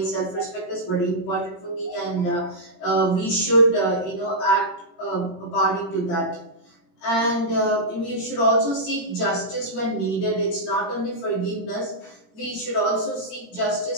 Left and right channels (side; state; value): right; late; 21 ms